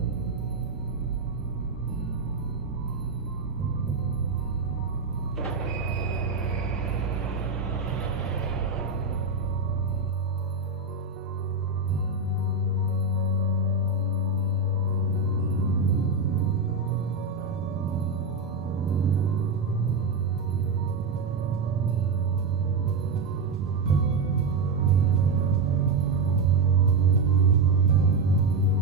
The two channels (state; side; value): quieter; left; 4.0 dB